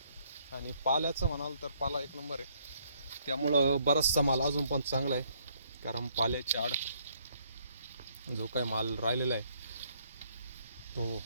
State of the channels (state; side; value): inverted; both; correlation -0.67